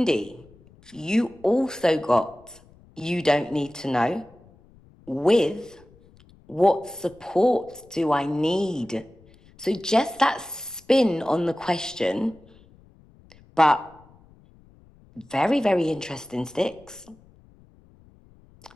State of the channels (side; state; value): left; noise; rumble, 27 dB below the sound